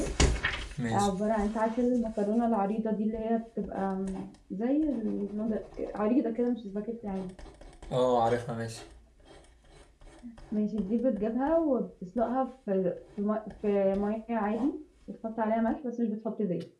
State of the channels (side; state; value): both; identical; correlation 1.00